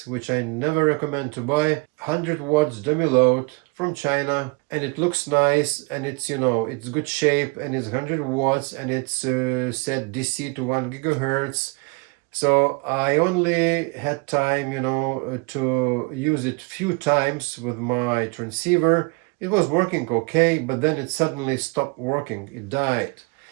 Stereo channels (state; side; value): quieter; left; 30.4 dB